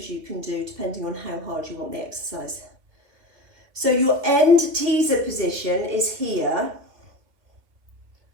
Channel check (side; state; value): left; late; 2.6 ms